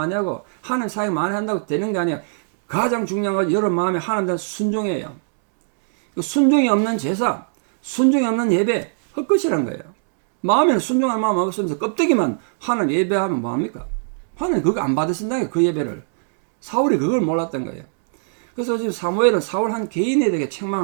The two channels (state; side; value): silent; left; digital silence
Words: 하고 하나님 사역 많이 한다고 되는 게 아니야. 가장 중요한 건 여러분 마음에 하나님 대한 순종이에요. 순종이 없는 제사, 순종이 없는 예배 헛것이란 거예요. 마음에는 순종할 마음 없으면서 껍데기만 하나님 예배하면 뭐합니까? 하나님 그거 안 받으신다는 그 예배를. 사울이 그걸 몰랐던 거예요. 그래서 지금 사무엘은 사울 한 개인에 대해